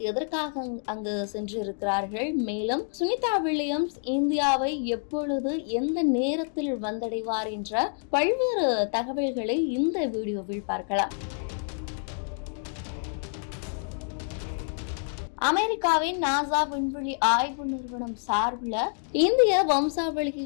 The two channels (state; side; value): silent; right; 60 dB below the other